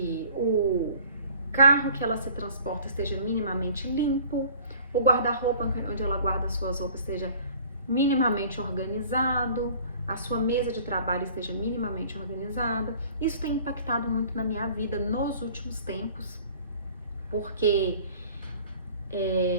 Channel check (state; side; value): inverted; both; correlation -0.50